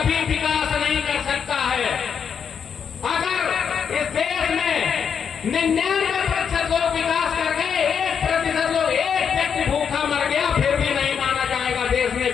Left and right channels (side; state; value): right; quieter; 7.2 dB